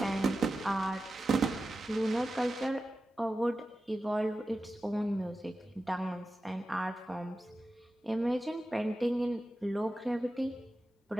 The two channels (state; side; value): normal; both; correlation 0.93